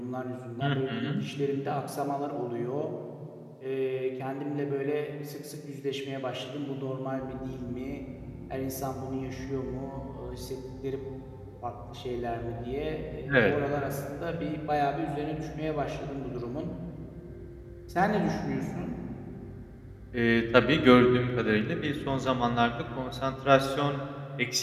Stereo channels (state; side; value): identical; both; correlation 1.00